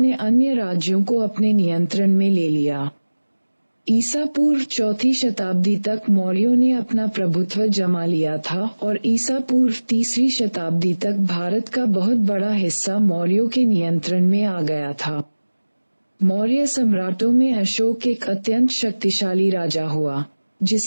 अन्य राज्यों को अपने नियंत्रण में ले लिया। ईसा पूर्व 4ठी शताब्दी तक मौर्यों ने अपना प्रभुत्व जमा लिया था और ईसा पूर्व 3री शताब्दी तक भारत का बहुत बड़ा हिस्सा मौर्यों के नियंत्रण में आ गया था। मौर्य सम्राटों में अशोक एक अत्यंत शक्तिशाली राजा हुआ,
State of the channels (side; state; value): both; inverted; correlation -1.00